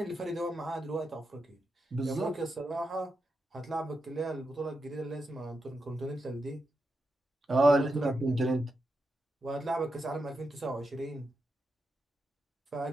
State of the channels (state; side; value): normal; both; correlation 0.87